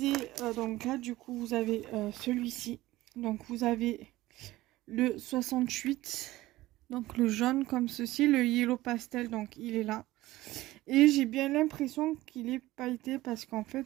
donc là du coup vous avez celui-ci. Donc vous avez le 68, donc le jaune comme ceci, le yellow pastel, donc il est là. Et j'ai bien l'impression qu'il est pailleté parce qu'en fait,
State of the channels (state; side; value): quieter; left; 17.2 dB